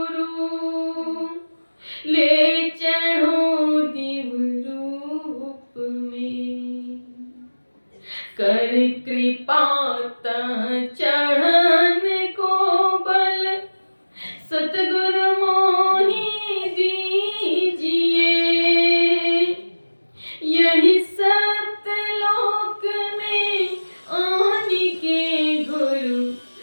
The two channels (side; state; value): both; inverted; correlation -1.00